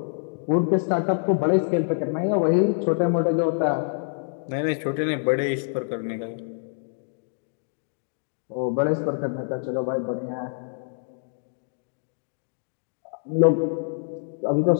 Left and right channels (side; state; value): right; silent; digital silence